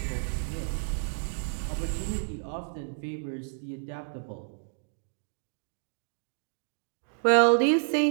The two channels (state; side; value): silent; left; digital silence